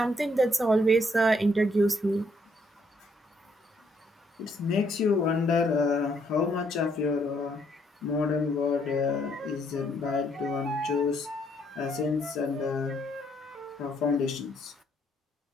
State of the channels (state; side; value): normal; both; correlation 0.71